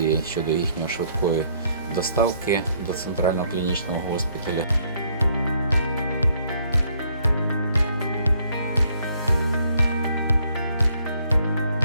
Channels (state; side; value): inverted; both; correlation -0.67